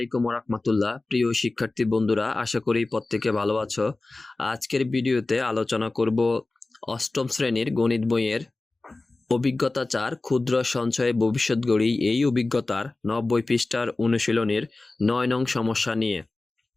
রাহমাতুল্লাহ। প্রিয় শিক্ষার্থী বন্ধুরা, আশা করি প্রত্যেকে ভালো আছো। আজকের ভিডিওতে আলোচনা করব অষ্টম শ্রেণীর গণিত বইয়ের অভিজ্ঞতা 4 ক্ষুদ্র সঞ্চয়ে ভবিষ্যৎ গড়ি, এই অভিজ্ঞতার 90 পৃষ্ঠার অনুশীলনীর 9 নং সমস্যা নিয়ে।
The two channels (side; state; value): right; quieter; 3.2 dB